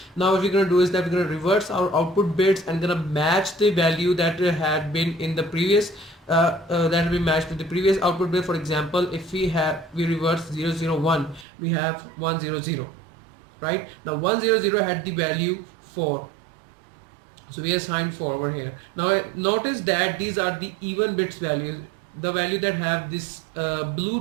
Now what we're going to do is that we're going to reverse our output bits and going to match the value that had been in the previous that will be matched with the previous output bit. For example, if we reverse 001, we have 100, right? Now 100 had the value 4, so we assigned 4 over here. Now notice that these are the even bits values. The value that have this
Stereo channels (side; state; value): left; drops out; at 11.5 s